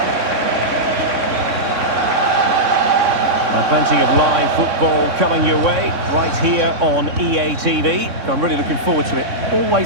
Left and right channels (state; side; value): late; left; 3.6 ms